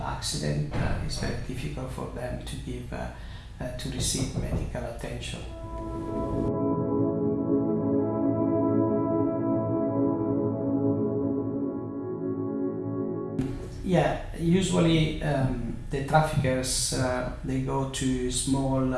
accident, it's very difficult for them to receive medical attention. Yeah, usually the traffickers, they go to small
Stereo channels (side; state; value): both; identical; correlation 1.00